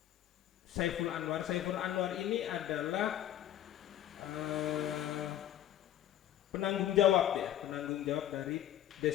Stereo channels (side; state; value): right; quieter; 11.9 dB